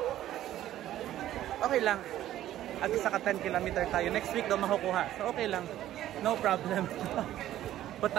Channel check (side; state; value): left; quieter; 13.0 dB